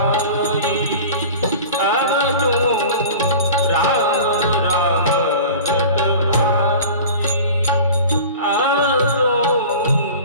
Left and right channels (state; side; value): inverted; both; correlation -0.38